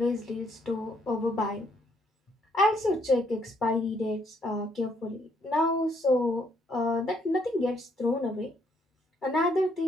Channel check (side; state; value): both; normal; correlation 0.70